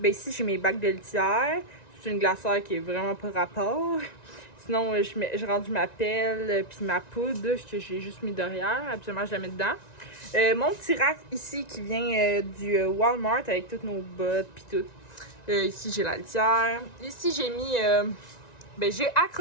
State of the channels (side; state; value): right; late; 1.9 ms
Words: ici, j'ai mes bacs de litière. C'est une glacière qui est vraiment pas rapport. Sinon, j'ai rendu ma pelle puis ma poudre que j'ai juste mis derrière. Absolument, je la mets dedans. Mon petit rack ici qui vient du Walmart avec toutes nos bottes puis tout. Ici, j'ai la litière. Ici, j'ai mis... j'ai